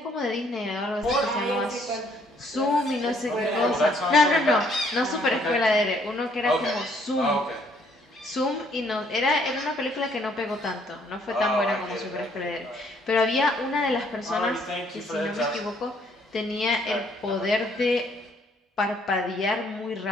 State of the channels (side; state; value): both; normal; correlation 0.65